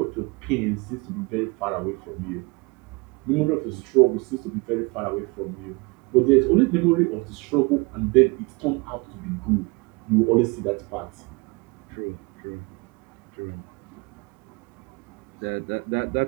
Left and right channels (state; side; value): quieter; left; 27.7 dB